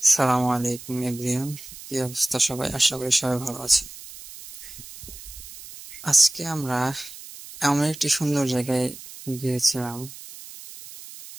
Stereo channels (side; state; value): right; noise; hiss, 15 dB below the sound